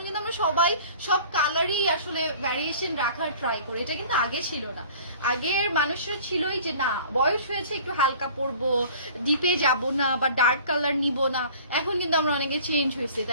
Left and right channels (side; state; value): both; inverted; correlation -0.47